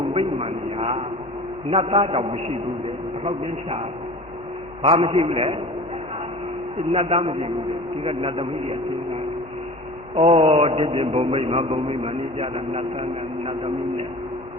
ပိမှန်ညာ နတ်သားတော့မရှိဘူးလေဘယ်တော့ပြန်ရှာဘာမရှိဘူးလေနတ်သားမရှိဘူးဒီကနတ်သမီးကြီးအချင်းချင်းဒီပြင်ဘုံမိတ်မှာနေကြတာနတ်သားနဲ့နတ်သမီးနဲ့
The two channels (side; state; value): both; normal; correlation 0.39